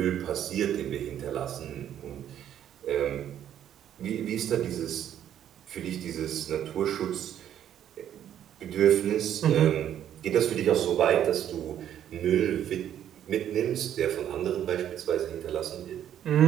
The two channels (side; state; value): left; quieter; 10.5 dB